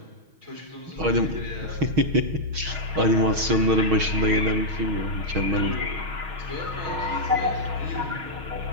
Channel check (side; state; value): left; late; 6.3 ms